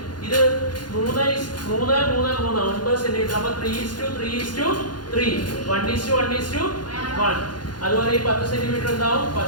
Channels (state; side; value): late; right; 0.70 ms